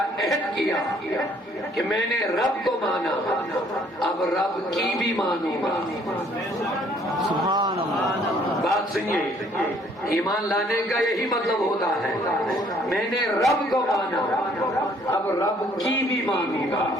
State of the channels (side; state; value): both; normal; correlation 0.62